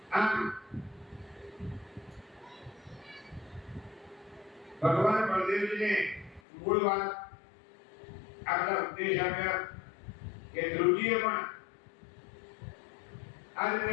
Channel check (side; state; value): right; drops out; at 6.4 s